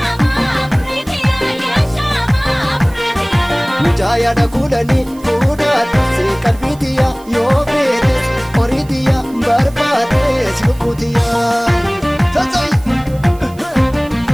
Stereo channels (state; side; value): noise; right; hiss, 25 dB below the sound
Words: Mucaya da kudani fuudhaa dursee qalbiitiya yoo feetes horiitiya barbaadees lubbuutiya.